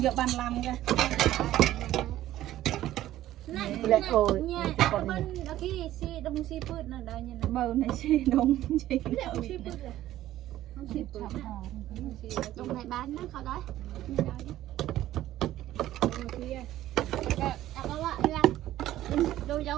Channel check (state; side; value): quieter; left; 13.9 dB